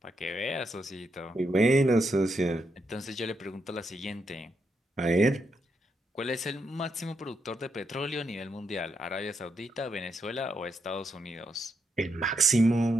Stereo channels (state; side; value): normal; both; correlation 0.80